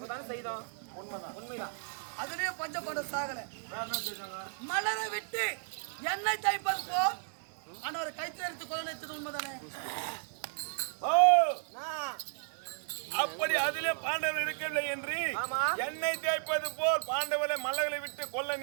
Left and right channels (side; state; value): left; silent; 55 dB below the other